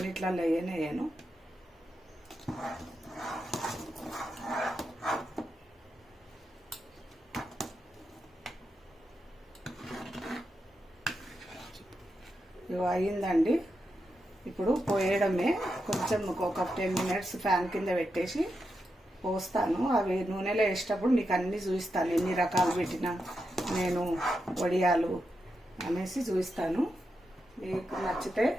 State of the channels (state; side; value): normal; both; correlation 0.86